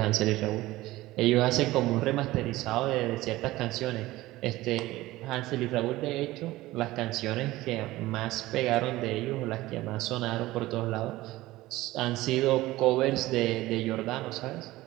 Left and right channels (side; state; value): left; quieter; 17.8 dB